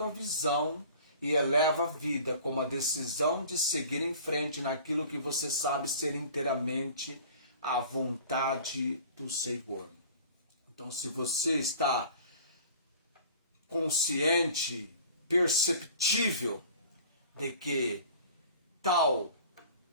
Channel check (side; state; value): both; inverted; correlation -0.45